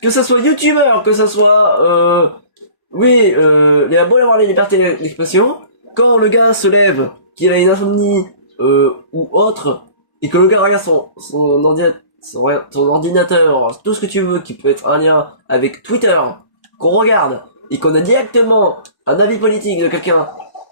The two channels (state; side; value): late; right; 1.1 ms